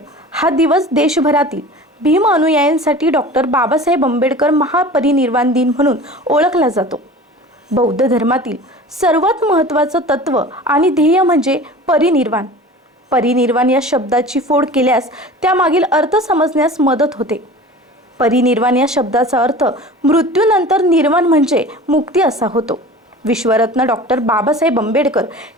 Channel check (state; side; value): normal; both; correlation 0.39